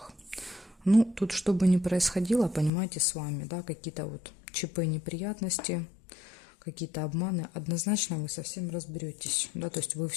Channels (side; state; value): right; drops out; at 2.7 s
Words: Ну, тут что бы ни происходило, понимаете, с вами, да, какие-то вот ЧП, неприятности, какие-то обманы, однозначно вы совсем разберетесь, да, то есть вы